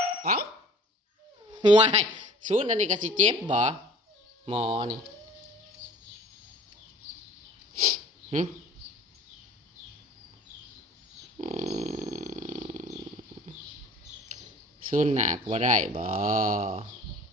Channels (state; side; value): normal; both; correlation 0.48